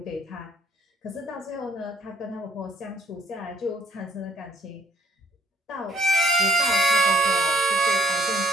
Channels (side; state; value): both; normal; correlation 0.63